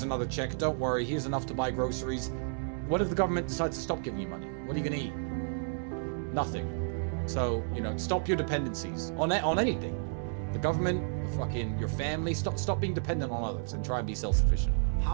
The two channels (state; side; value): silent; left; digital silence